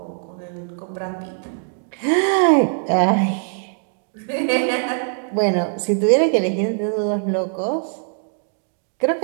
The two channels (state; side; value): silent; left; 63 dB below the other